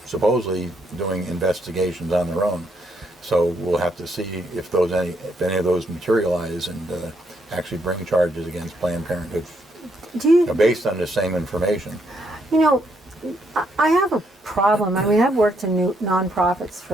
supposedly doing investigations on their own. So we'll have to see if any of those materialize and actually bring charges against Planned Parenthood based on the same information. I have a problem. I've worked in nonprofits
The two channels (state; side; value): normal; both; correlation 0.74